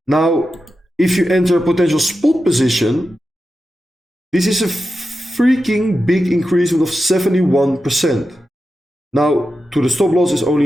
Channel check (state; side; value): normal; both; correlation 0.91